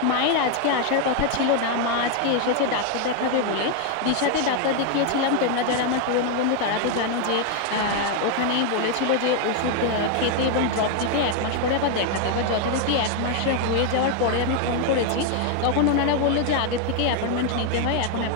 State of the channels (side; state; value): both; different; correlation 0.01